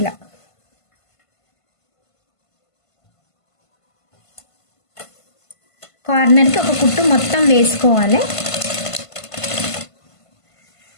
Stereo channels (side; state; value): right; late; 1.5 ms